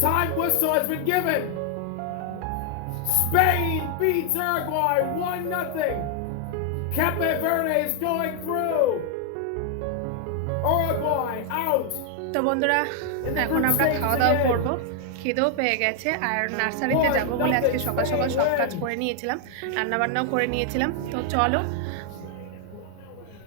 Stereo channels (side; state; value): both; different; correlation 0.00